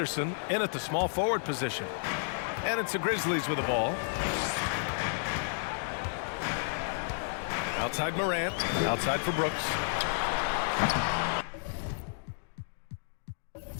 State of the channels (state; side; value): silent; right; digital silence